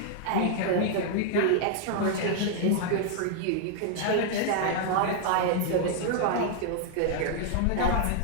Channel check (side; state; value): both; different; correlation 0.00